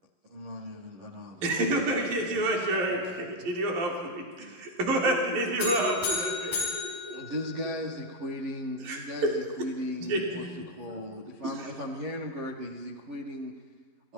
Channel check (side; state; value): left; late; 11 ms